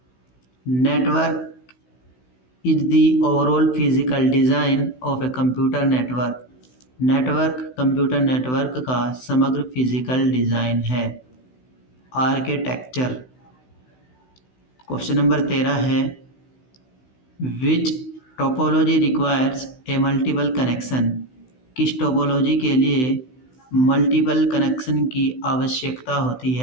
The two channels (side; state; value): right; late; 16 ms